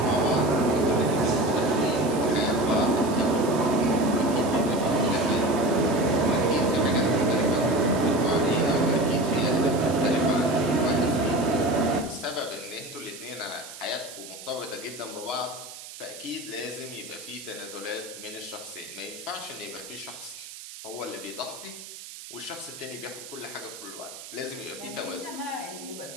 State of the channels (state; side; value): noise; right; hiss, 14 dB below the sound